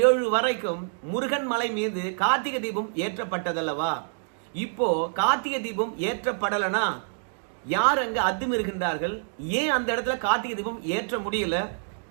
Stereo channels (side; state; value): left; silent; digital silence